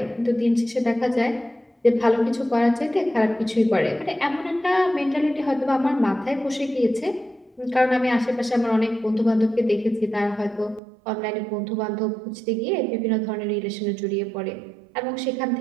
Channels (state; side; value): drops out; left; at 10.8 s